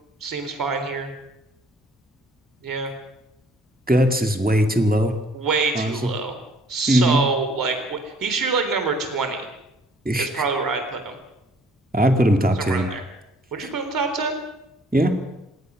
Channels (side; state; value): both; normal; correlation 0.60